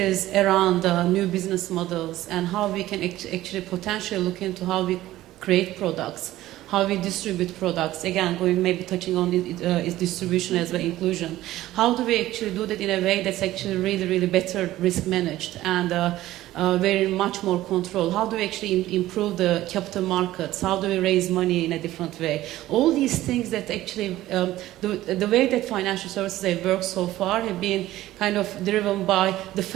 around new business models and how we can actually potentially look into how we create products, how we distribute products, again, maybe touching on its distribution as well, inclusion. How do we actually do that in a way that's actually really, really better risk managed and very much more control? How do we actually improve the capital markets? How do we raise money in a different way? All these things that actually, the way that financial services have worked so far have been kind of driven by the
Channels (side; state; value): left; quieter; 15.4 dB